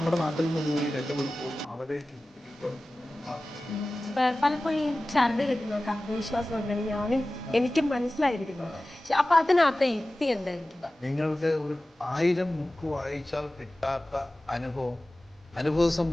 നാട്ടിൽ നിന്ന് പോയി രക്ഷപ്പെടുമ്പോൾ അവരെ പലപ്പോഴും ഈ ചരട് കെട്ടുന്നവർക്ക് ആത്മവിശ്വാസം ഉണ്ടെങ്കിൽ ഞാനും എനിക്കും മനസ്സിലായിരിക്കുന്നു. അപ്പൊ അതിനകത്ത് യുക്തി എന്തായിരിക്കും? നിങ്ങൾക്ക് ഒരു 1000 ബുക്ക് വായിച്ചാൽ കിട്ടാത്ത അനുഭവ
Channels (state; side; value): normal; both; correlation 0.96